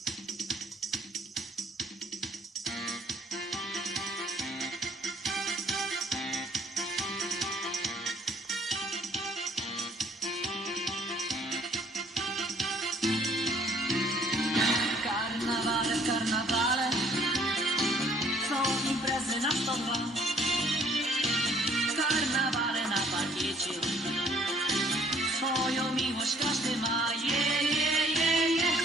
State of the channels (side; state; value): both; normal; correlation 0.60